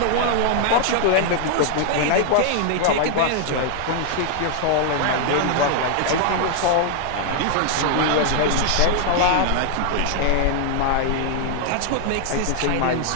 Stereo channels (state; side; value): different; both; correlation 0.00